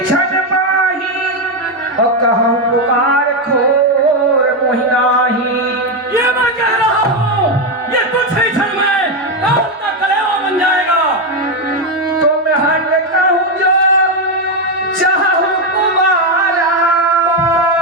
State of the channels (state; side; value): normal; both; correlation 0.07